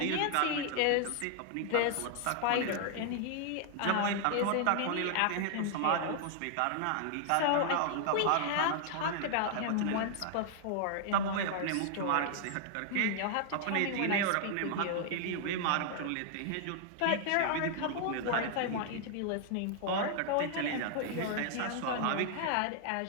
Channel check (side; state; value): both; different; correlation 0.00